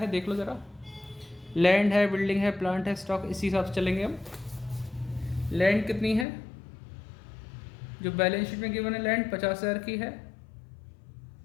देख लो ज़रा, लैंड है, बिल्डिंग है, प्लांट है, स्टॉक, इसी हिसाब से चलेंगे हम। लैंड कितनी है, जो बैलेंस शीट में गिवन है लैंड 50,000 की है,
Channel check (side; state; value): right; drops out; at 6.2 s